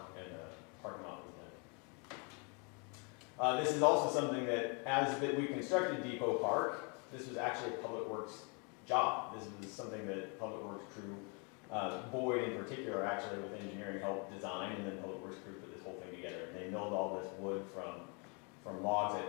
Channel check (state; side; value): quieter; right; 34.5 dB